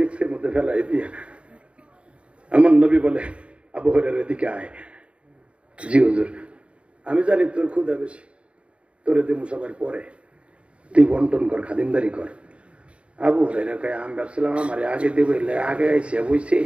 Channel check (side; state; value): left; late; 0.060 ms